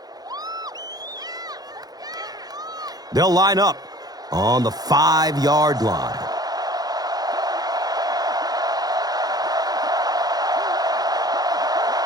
They'll line up on the 5-yard line.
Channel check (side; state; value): left; late; 0.19 ms